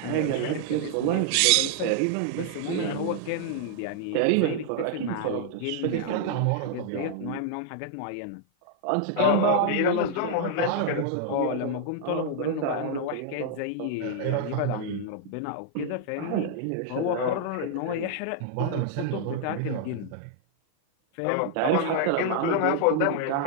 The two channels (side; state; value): both; different; correlation -0.01